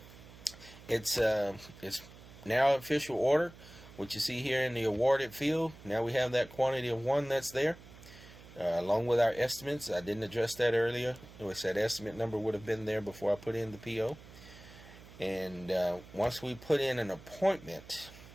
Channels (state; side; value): noise; right; hum, 19 dB below the sound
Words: It's now official order. What you see here in the awarded field, now we have that quantity of 1 that's there, along with our estimates. I didn't address that earlier. It was that estimate number would have been there before I put in the PO. And once we put in an appointment,